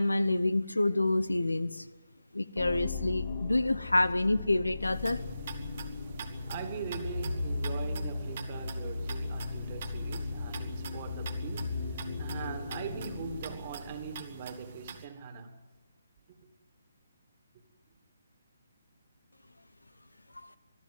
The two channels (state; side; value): inverted; both; correlation -0.91